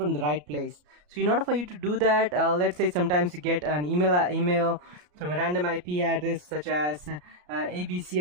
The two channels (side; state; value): left; late; 34 ms